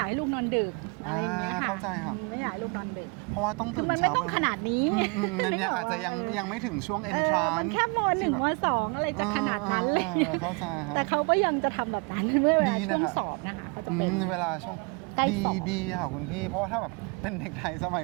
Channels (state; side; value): quieter; left; 31.7 dB